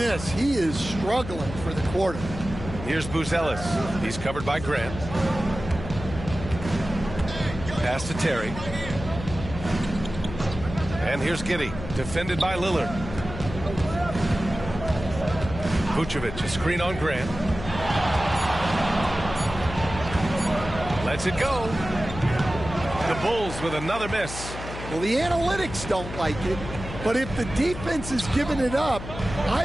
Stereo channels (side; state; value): left; noise; hum, 10 dB below the sound